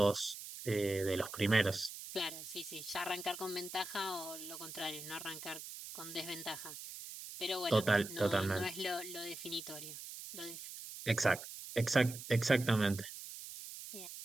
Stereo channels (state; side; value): noise; right; hiss, 11 dB below the sound